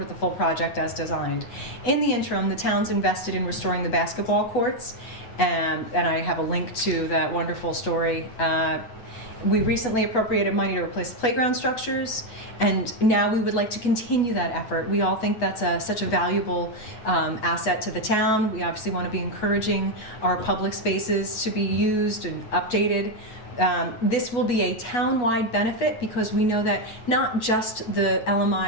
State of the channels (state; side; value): late; right; 9.4 ms